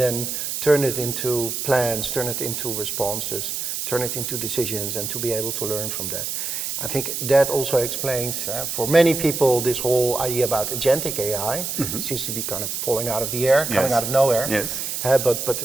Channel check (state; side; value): noise; right; hiss, 3 dB below the sound